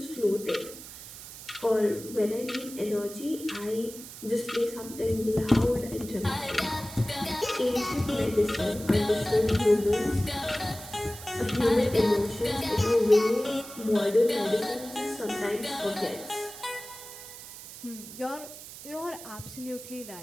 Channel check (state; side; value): noise; right; hiss, 14 dB below the sound